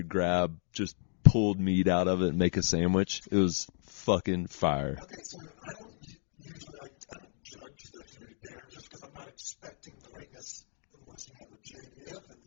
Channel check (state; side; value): silent; right; digital silence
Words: grab just pulled meat out of it and make a sandwich. It was fucking fire. Okay, so I don't usually I don't judge the food there just because I'm not expecting greatness unless you have a JBF